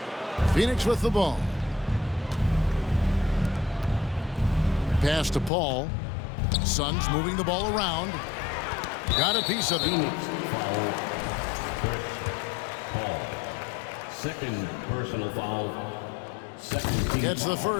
Phoenix with the ball. Pass to Paul. Suns moving the ball around. Got a piece of it. Foul. Paul. Second personal foul. Second team Gets the foul.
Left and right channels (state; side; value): drops out; right; at 5.5 s